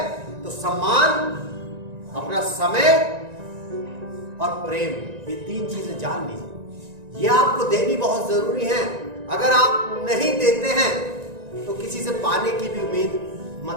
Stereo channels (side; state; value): left; late; 1.9 ms